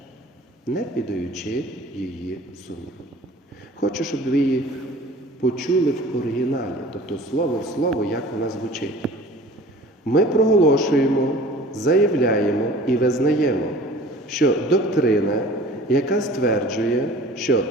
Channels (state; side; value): normal; both; correlation 0.44